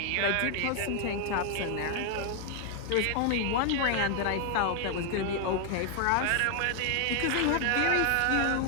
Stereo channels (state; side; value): different; both; correlation 0.00